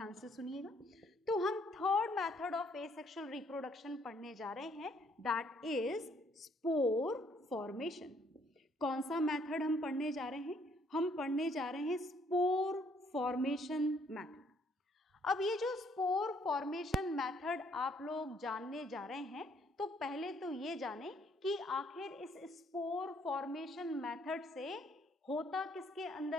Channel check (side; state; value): both; normal; correlation 0.66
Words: से सुनिएगा। तो हम third method of asexual reproduction पढ़ने जा रहे हैं, दैट इज स्पोर फॉर्मेशन। कौन सा मेथड हम पढ़ने जा रहे हैं? हम पढ़ने जा रहे हैं स्पोर फॉर्मेशन मेथड। अब ये जो स्पोर फॉर्मेशन मेथड आप लोग जानने जा रहे हैं, तो पहले तो ये जाने कि आखिर इस स्पोर फॉर्मेशन मेथड से होता किसके